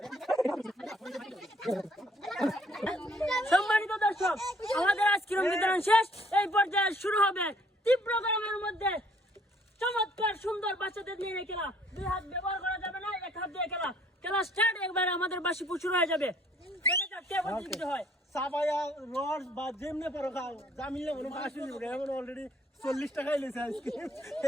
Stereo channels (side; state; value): both; normal; correlation 0.62